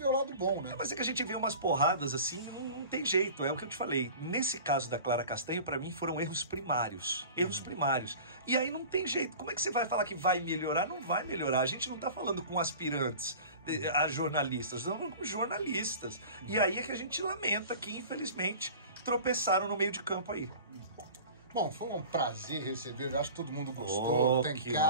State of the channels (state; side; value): inverted; both; correlation -0.39